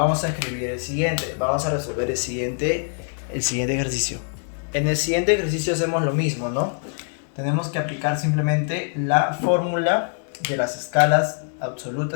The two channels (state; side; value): silent; right; 60 dB below the other